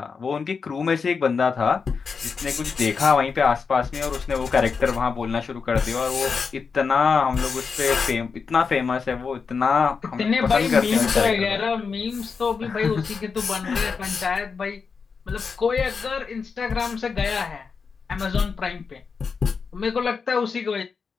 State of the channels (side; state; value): right; quieter; 5.4 dB